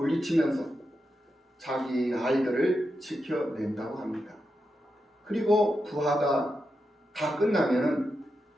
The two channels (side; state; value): both; normal; correlation 0.87